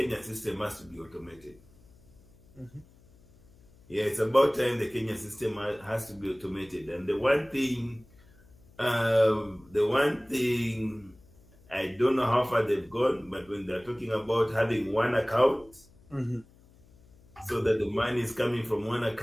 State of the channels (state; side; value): noise; left; hum, 27 dB below the sound